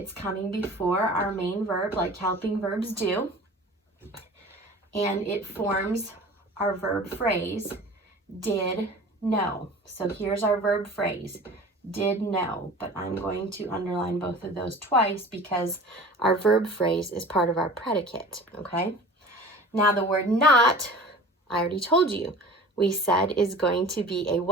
coming before our main verb like helping verbs do. And it forms our verb phrase, did know. So here's our verb phrase, did know, but I'm going to underline both of those twice because our verb phrase is part of our predicate, okay? Now the word not, I already told you, we said is going to be a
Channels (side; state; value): both; normal; correlation 0.41